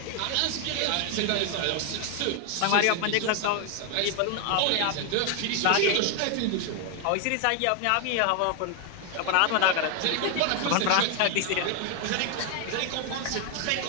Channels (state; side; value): different; both; correlation 0.00